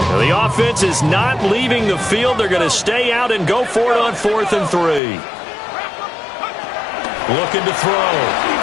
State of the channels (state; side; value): drops out; right; at 5.0 s